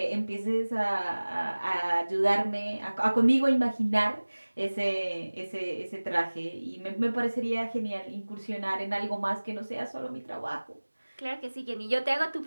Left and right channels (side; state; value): both; inverted; correlation -1.00